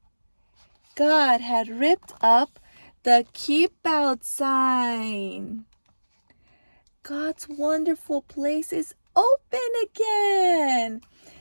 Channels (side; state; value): both; inverted; correlation -1.00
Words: God had ripped up the keep out sign. God's wonderful place is open again.